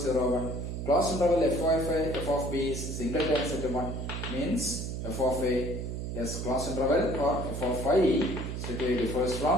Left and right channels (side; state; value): right; noise; hum, 4 dB below the sound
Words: 1. Closed interval f of b is singleton set 1. Means f of a is closed interval or f of I strictly differs